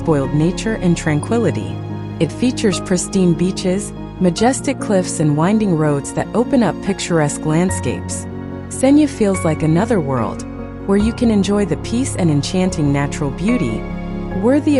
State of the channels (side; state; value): both; identical; correlation 1.00